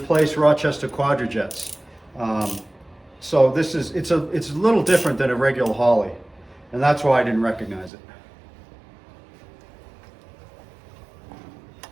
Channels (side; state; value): left; drops out; at 7.9 s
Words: Rochester Quadrajets. So this is it's a little different than a regular Holley, and that's why I didn't recognize it.